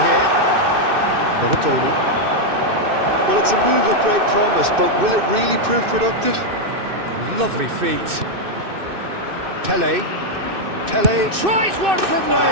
here. Tony. Well, it's a move of great promise, but will it really prove productive? Lovely feet. Pele. Pele tries one from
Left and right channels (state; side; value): late; left; 2.6 ms